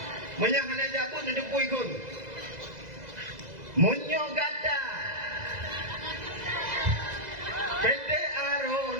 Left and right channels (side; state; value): left; late; 2.0 ms